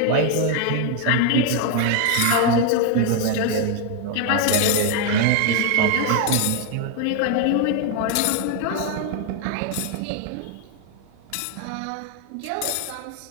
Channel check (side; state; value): both; different; correlation 0.01